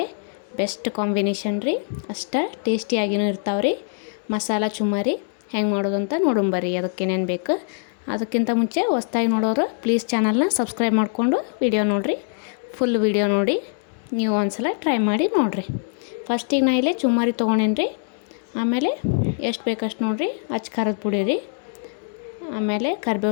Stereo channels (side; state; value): right; silent; 63 dB below the other